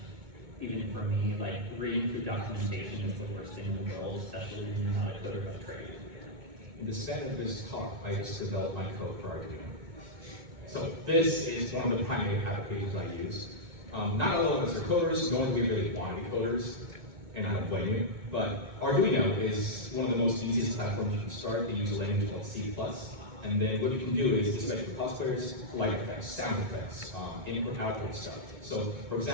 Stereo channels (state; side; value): late; left; 2.2 ms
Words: even for me, like reading through documentation is the worst thing in the world, especially when you're not a coder by trade. in the standard of this talk, I just developed my code for Arduino. So this is one of the primary applications I use. Not all of us are coders, nor do we really want to be coders, and I don't blame you, but Arduino is one of the most easiest platforms you can start. They use a language called C++, and then what you can do is, especially for cosplayers, light effects, sound effects, input-output stuff. So, for